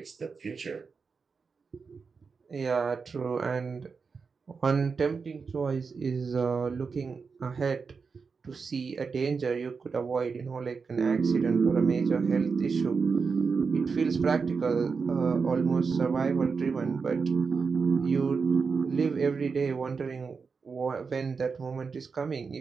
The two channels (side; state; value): left; quieter; 5.1 dB